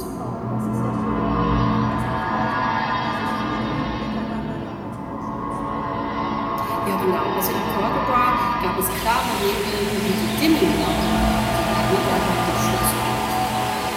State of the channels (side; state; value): both; identical; correlation 1.00